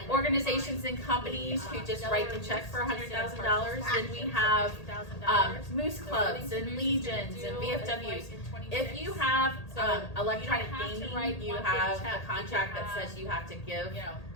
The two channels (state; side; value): late; right; 1.8 ms